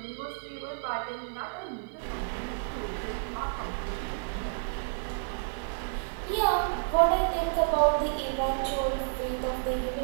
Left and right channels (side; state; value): left; silent; digital silence